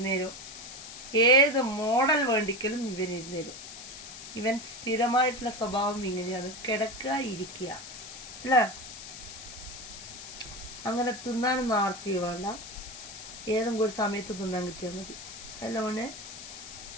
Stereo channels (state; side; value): noise; left; hiss, 12 dB below the sound